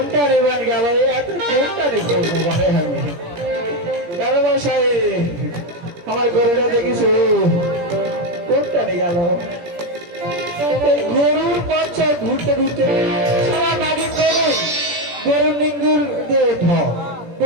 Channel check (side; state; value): left; late; 17 ms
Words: নেবেন গেল এত কোনটা দেখবো মানে আমি কারো বাসায় আমার গরুটা দেখিস কোনটা নিয়ে গেল এই গরুর বাচ্চা ঘুরতে ঘুরতে সবার আগে গরুর নিঙ্গুর দিয়ে উঠ